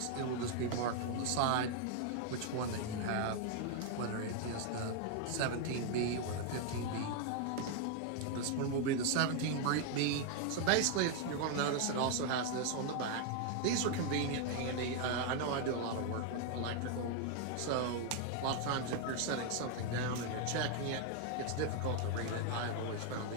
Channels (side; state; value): both; different; correlation 0.00